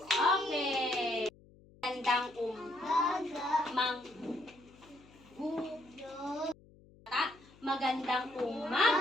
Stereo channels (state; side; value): noise; left; hum, 25 dB below the sound